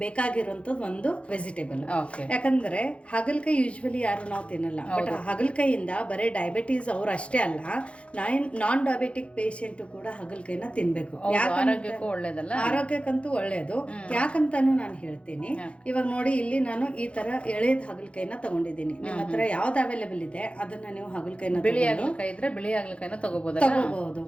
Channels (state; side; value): late; right; 0.061 ms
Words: ಬೇಕಾಗಿರುವಂಥದ್ದು ಒಂದು ವೆಜಿಟೇಬಲ್. ಯಾಕಂದರೆ ಹಾಗಲಕಾಯಿ ಯೂಶ್ವಲಿ ಯಾರು ನಾವು ತಿನ್ನಲ್ಲ, ಬಟ್ ಹಾಗಲಕಾಯಿಯಿಂದ ಬರೀ ಡಯಾಬಿಟೀಸ್ ಅವ್ರು ಅಷ್ಟೇ ಅಲ್ಲ, ನಾನ್ ಡಯಾಬಿಟಿಕ್ ಪೇಷಂಟು ಕೂಡ ಹಾಗಲಕಾಯಿನ ತಿನ್ಬೇಕು. ಆರೋಗ್ಯಕ್ಕಂತೂ ಒಳ್ಳೆಯದು. ಯಾಕಂತಾನು ನಾನು ಹೇಳ್ತೀನಿ. ಇವಾಗ ನೋಡಿ, ಇಲ್ಲಿ ನಾನು ಈ ತರ ಎಳೆದ ಹಾಗಲಕಾಯಿನ ತಗೊಂಡಿದ್ದೀನಿ. ನಿಮ್ಮ ಹತ್ರ ಯಾವ್ದು ಅವೈಲೇಬಲ್ ಇದೆ ಅದನ್ನ ನೀವು ಹಾಗಲಕಾಯಿನ ಬಿಳಿ ಹಾಗಲಕಾಯಿ ಇದ್ರೆ ಬಿಳಿ ಹಾಗಲಕಾಯಿನ ತಗೋಬಹುದು,